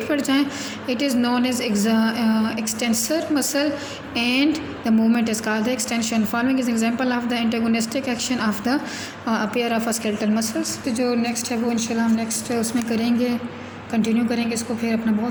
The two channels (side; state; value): both; identical; correlation 1.00